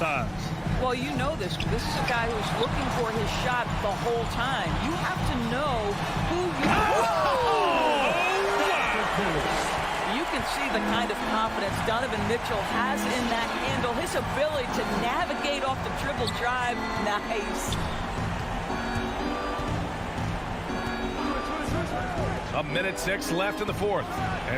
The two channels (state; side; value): identical; both; correlation 1.00